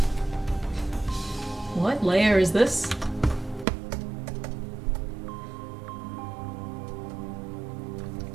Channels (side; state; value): left; drops out; at 3.7 s